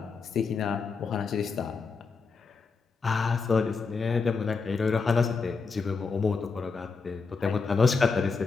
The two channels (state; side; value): quieter; right; 4.8 dB